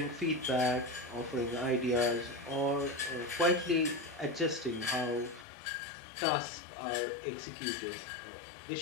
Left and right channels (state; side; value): drops out; right; at 5.5 s